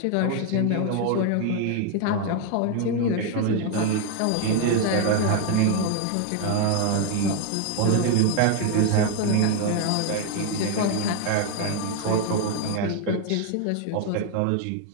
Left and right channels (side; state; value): both; different; correlation 0.01